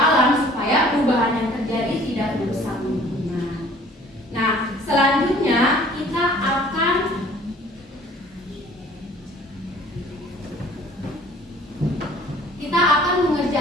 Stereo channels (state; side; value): normal; both; correlation 0.52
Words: supaya perubahan yang terjadi tidak merusak lingkungan. Nah, selanjutnya kita akan